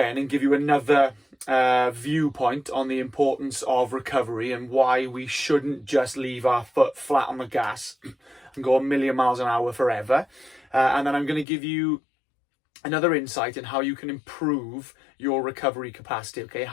and give you another viewpoint on the importance of recovery and why we shouldn't just leave our foot flat on the gas and go a million miles an hour forever. And then I'm going to give you another insight in how you can improve your recovery capacity, okay?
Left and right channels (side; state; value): right; drops out; at 11.5 s